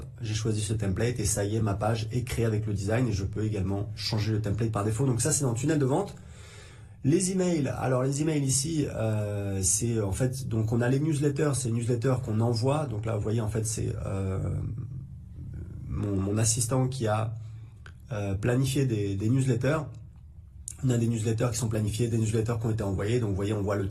j'ai choisi ce template et ça y est, ma page est créée avec le design et je peux également changer le template par défaut. Donc ça, c'est dans le tunnel de vente. Les emails, alors les emails ici, c'est en fait, donc on a les newsletters, c'est les newsletters qu'on envoie. Donc là, vous voyez, en fait, c'est mon assistant qui a planifié des newsletters. On a des newsletters qui sont planifiés, des newsletters qui ont été envoyés. Donc vous voyez, on voit le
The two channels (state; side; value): identical; both; correlation 1.00